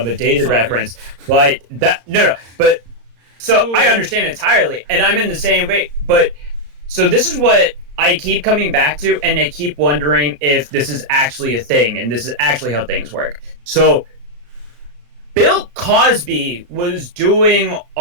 a dated sorry. reference, but but so Ooh, I yeah. understand entirely, and I'm in the same way. But so this is what I keep coming back to, and I keep wondering if this is actually a thing, and this is actually how things work. So Bill Cosby was doing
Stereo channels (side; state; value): left; late; 35 ms